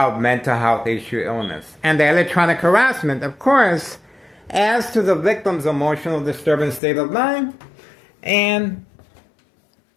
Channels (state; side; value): drops out; right; at 6.8 s